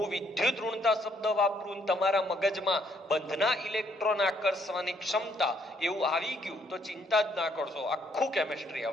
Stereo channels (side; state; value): both; normal; correlation 0.68